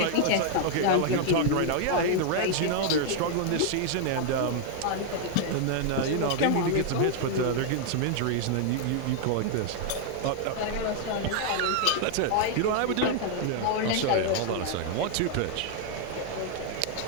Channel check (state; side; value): different; both; correlation 0.00